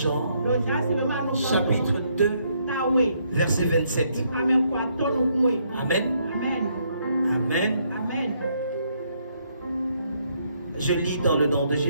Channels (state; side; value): inverted; both; correlation -0.72